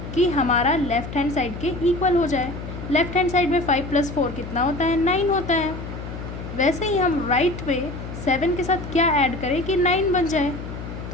कि हमारा लेफ़्ट हैंड साइड के इक्वल हो जाए। लेफ़्ट हैंड साइड में 5 + 4 कितना होता है, 9 होता है। वैसे ही हम राइट पे 7 के साथ क्या ऐड करें कि 9 बन जाए।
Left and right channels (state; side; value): noise; left; hum, 9 dB below the sound